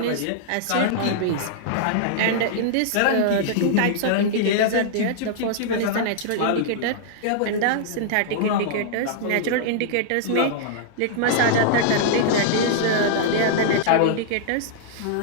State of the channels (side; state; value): both; different; correlation -0.01